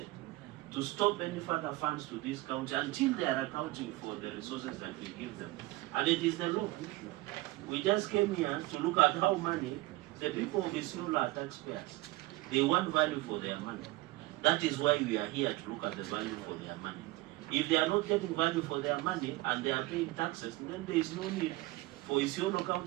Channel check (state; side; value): quieter; left; 19.6 dB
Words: to stop any further funds to this county until they are accounting for the resources that we give them. And it is the law. We just came here to look at how money, the people of Isiolo are taxpayers. They want value for their money. That is why we are here to look at the value for their money. If they are not getting value for their money and they are paying taxes, then there is no need for Isiolo